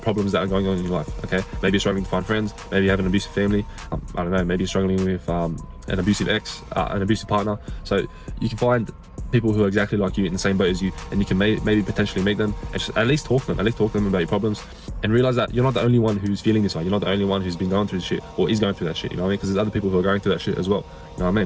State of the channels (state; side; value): identical; both; correlation 1.00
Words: that are going on in your life. Okay, maybe you're struggling to find friends, maybe you have an abusive family, I don't know, maybe you're struggling with an abusive ex, an abusive partner. So you can find people who are exactly like you in the same boat as you, and you can maybe potentially meet them and just at least talk to them about your problems, and realize that you're not the only one who's feeling this way. You're not the only one who's been going through this shit or is going through that shit, you know what I mean? Because there's other people who are going through that shit as well, you know what I